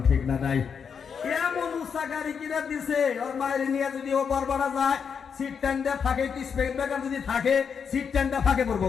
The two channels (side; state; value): right; quieter; 6.6 dB